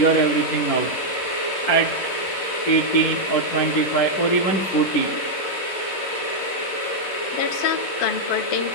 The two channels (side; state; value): right; late; 11 ms